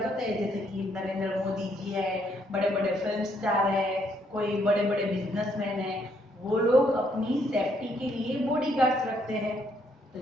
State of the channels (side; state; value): both; normal; correlation 0.71